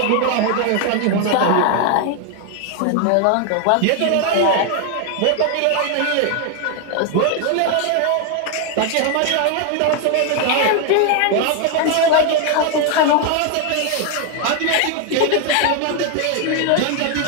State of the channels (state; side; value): different; both; correlation 0.01